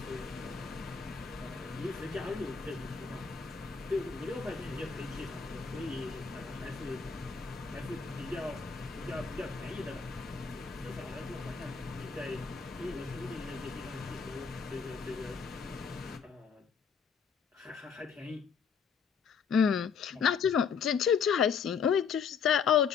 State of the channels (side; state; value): right; quieter; 6.2 dB